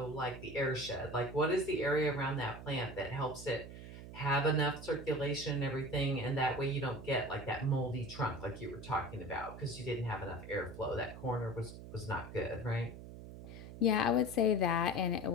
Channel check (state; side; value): noise; right; hum, 13 dB below the sound